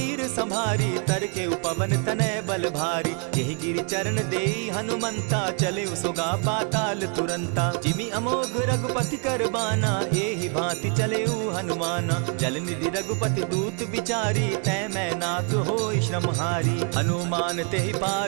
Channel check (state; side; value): quieter; left; 39.2 dB